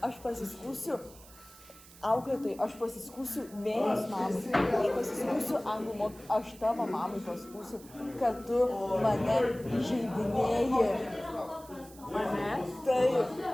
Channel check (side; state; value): right; noise; hiss, 21 dB below the sound